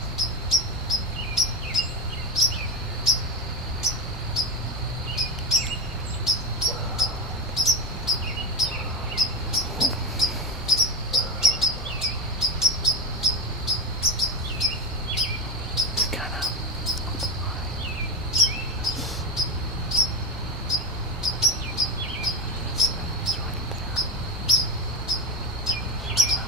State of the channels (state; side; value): normal; both; correlation 0.19